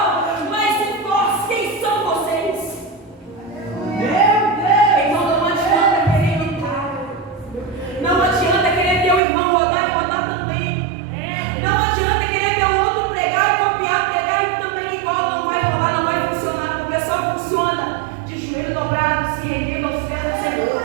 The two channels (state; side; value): drops out; left; at 9.2 s